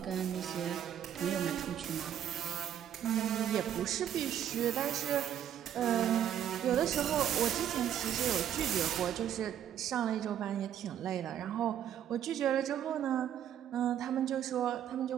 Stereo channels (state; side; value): quieter; left; 10.1 dB